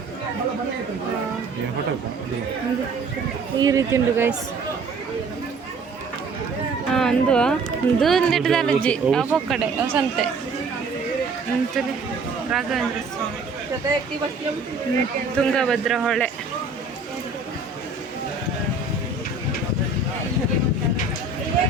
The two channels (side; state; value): left; quieter; 3.9 dB